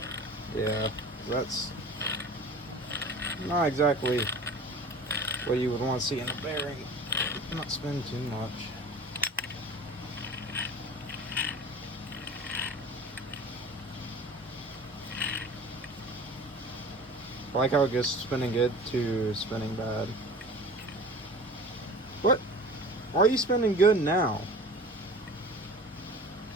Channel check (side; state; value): both; normal; correlation 0.40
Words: Yeah, that's not exactly what you would want to see in a bearing. Not spend too much. I like how it goes spinning good to spinning bad. What? Why are you spinning good now?